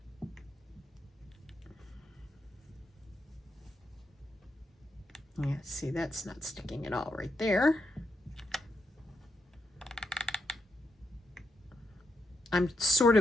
Yeah, see, that's not sticking at all right there. I'm sort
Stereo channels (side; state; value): both; normal; correlation 0.82